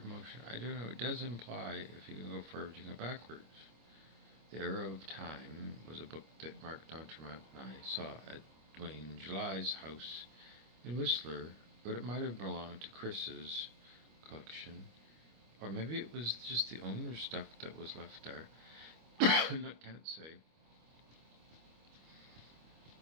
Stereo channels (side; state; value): left; late; 25 ms